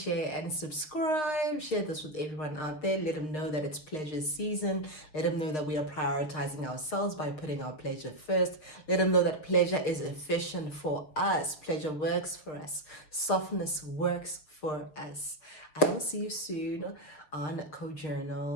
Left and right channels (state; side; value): late; right; 6.5 ms